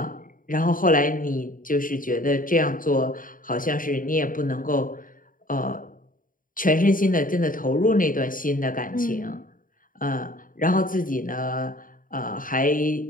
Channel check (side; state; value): right; late; 0.40 ms